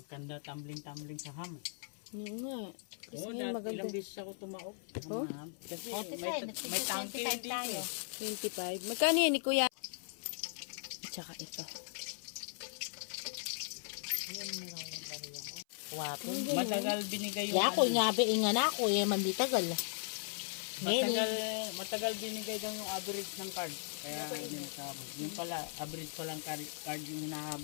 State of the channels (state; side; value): silent; right; 53 dB below the other